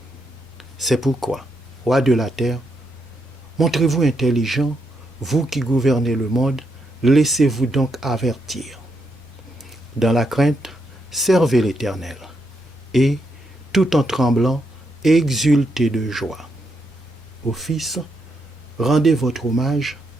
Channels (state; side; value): normal; both; correlation 0.80